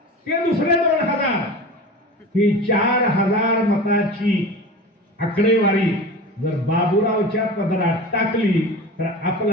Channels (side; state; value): both; normal; correlation 0.33